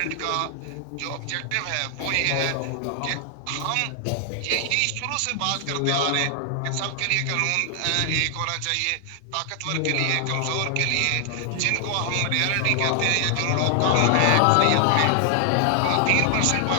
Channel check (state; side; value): different; both; correlation 0.00